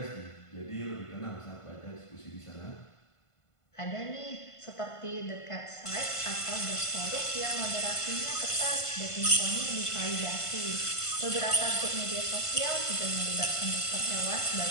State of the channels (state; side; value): late; right; 1.5 ms